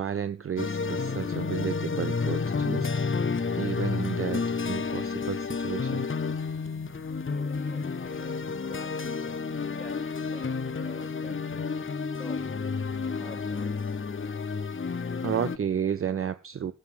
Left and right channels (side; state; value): both; normal; correlation 0.45